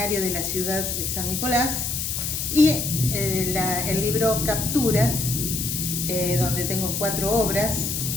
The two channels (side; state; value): left; noise; hiss, 2 dB below the sound